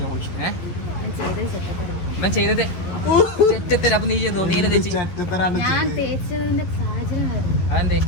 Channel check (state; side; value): late; right; 11 ms